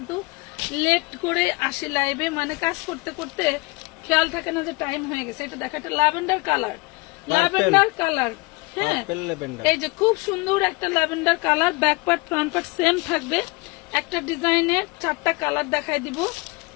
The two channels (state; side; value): quieter; right; 25.9 dB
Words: লেট করে আসি লাইভে, মানে কাজ করতে করতে খেয়াল থাকে না যে টাইম হয়ে গেছে। এটা দেখো, একটা ল্যাভেন্ডার কালার, ল্যাভেন্ডার কালার। হ্যাঁ, এই যে খুব সুন্দর একটা lavender colour. Back part front part same থাকবে। একটা ডিজাইনের 4টা কালার দেখাই দিব।